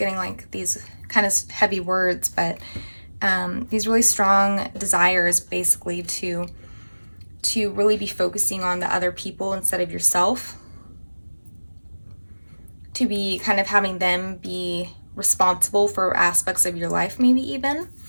like these kind of heavy words, but these really strong desires basically to really be focusing on the other people instead of yourself, to be kind of having them be responsible for aspects of your life, maybe even,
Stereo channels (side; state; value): both; inverted; correlation -1.00